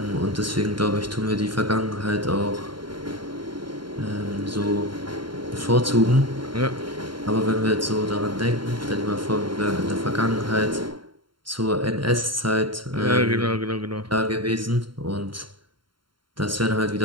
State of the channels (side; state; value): left; late; 0.72 ms